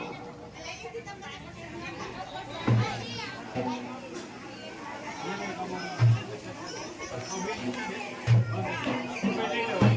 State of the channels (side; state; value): both; identical; correlation 1.00